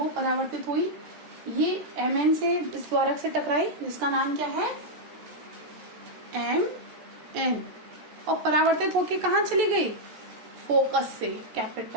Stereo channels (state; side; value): late; left; 14 ms